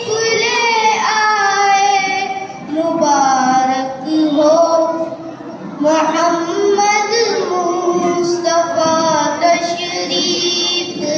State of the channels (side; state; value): both; identical; correlation 1.00